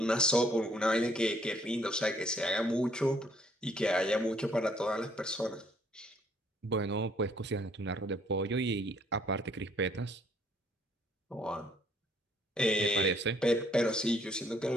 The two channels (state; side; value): normal; both; correlation 0.64